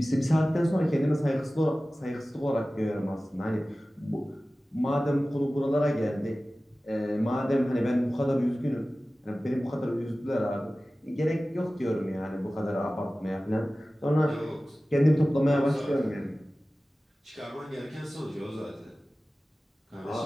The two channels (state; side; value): normal; both; correlation 0.96